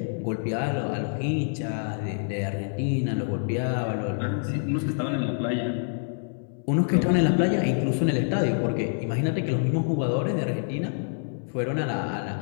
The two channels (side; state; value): right; silent; digital silence